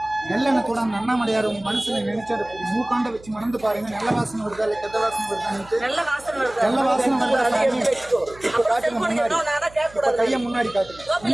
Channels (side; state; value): right; noise; hum, 22 dB below the sound